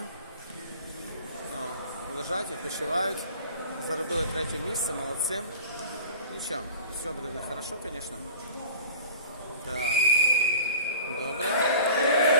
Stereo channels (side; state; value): both; inverted; correlation -0.42